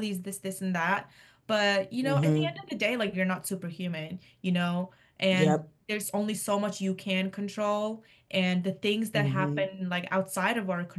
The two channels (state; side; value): identical; both; correlation 1.00